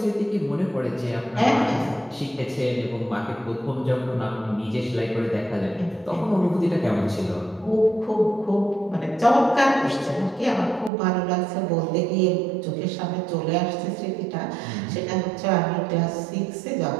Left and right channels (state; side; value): drops out; left; at 10.9 s